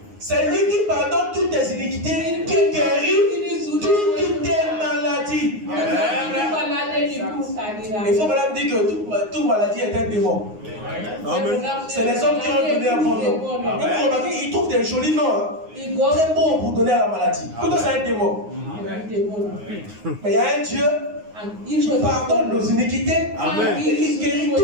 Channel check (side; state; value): left; late; 9.6 ms